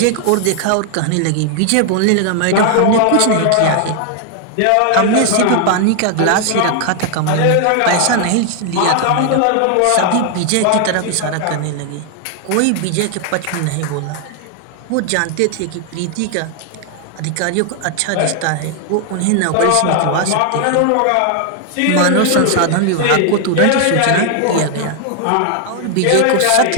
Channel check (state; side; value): different; both; correlation 0.00